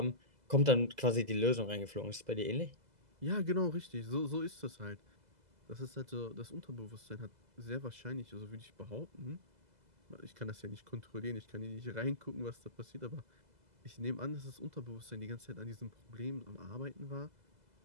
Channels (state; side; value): late; left; 2.0 ms